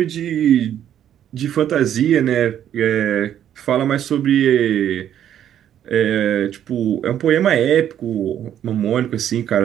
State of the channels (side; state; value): left; quieter; 10.3 dB